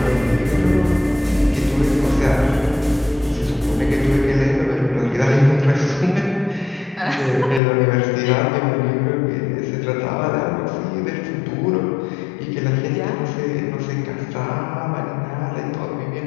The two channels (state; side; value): drops out; right; at 7.6 s